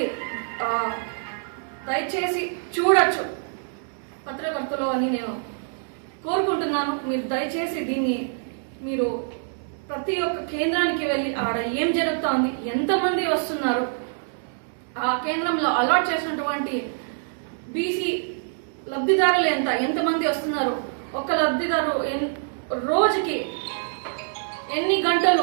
దయచేసి చూడొచ్చు పత్రికర్తలు అని నేను కోరుకుంటున్నాను. మీరు దయచేసి దీన్ని మీరు ప్రతి ఒక్క కేంద్రానికి వెళ్ళి ఆడ ఏం జరుగుతోంది, ఎంతమంది వస్తున్నారు, ఆ కేంద్రంలో అలాట్ చేసినటువంటి బీసీ లబ్ధిదారులు ఎంతమంది వస్తున్నారు, ఒక లబ్ధిదారు రోజుకి ఎన్ని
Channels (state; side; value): silent; left; digital silence